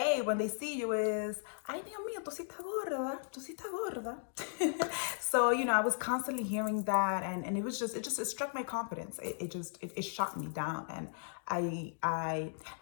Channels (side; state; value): right; silent; digital silence